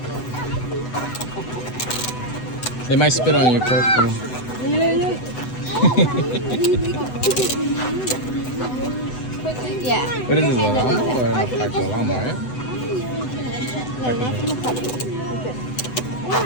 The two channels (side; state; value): right; late; 8.0 ms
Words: They might spit on you, careful. Yeah. What is this, a llama or an alpaca? A llama, right? No, not from the puppy.